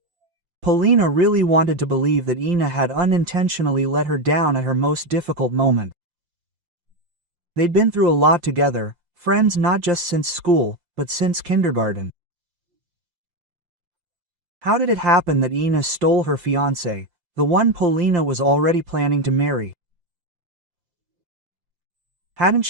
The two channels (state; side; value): late; left; 5.7 ms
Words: Polina really wanted to believe that Ina had unintentionally let her down at her most difficult moment. They'd been through a lot together, friends not just since school, but since kindergarten. How did it happen that Ina stole her fiancé, the one Polina was already planning to marry? Hadn't